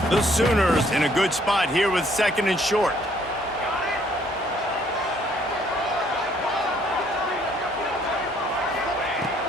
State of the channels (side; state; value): both; normal; correlation 0.64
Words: The Sooners in a good spot here with second and short.